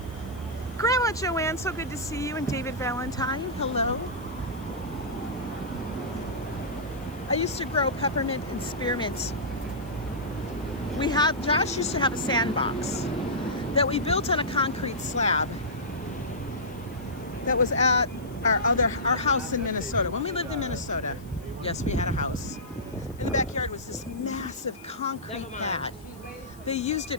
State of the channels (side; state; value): left; noise; hiss, 25 dB below the sound